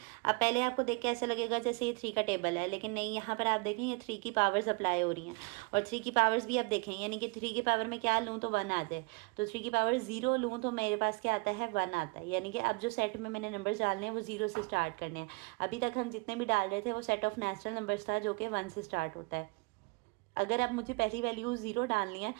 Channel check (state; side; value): quieter; left; 30.1 dB